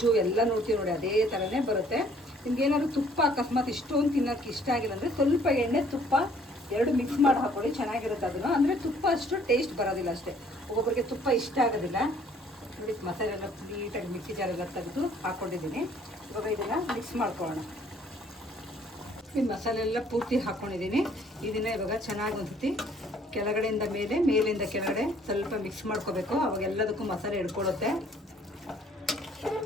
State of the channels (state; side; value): normal; both; correlation 0.60